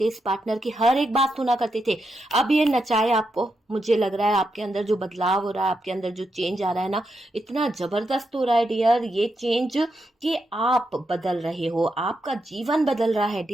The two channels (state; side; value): normal; both; correlation 0.84